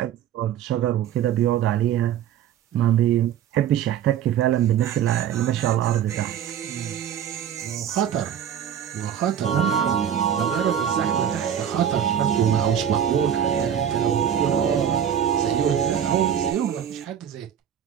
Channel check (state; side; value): quieter; left; 9.4 dB